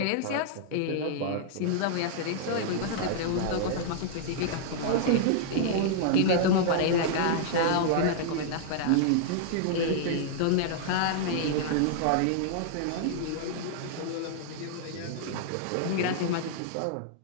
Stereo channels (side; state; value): both; different; correlation -0.01